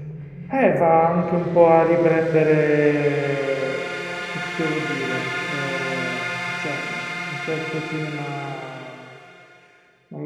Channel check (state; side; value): identical; both; correlation 1.00